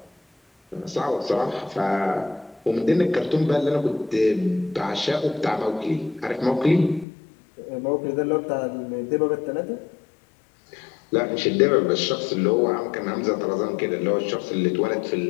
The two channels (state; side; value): drops out; right; at 7.1 s